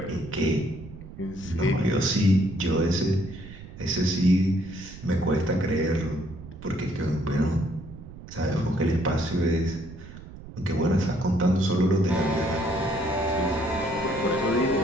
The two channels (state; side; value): noise; right; rumble, 15 dB below the sound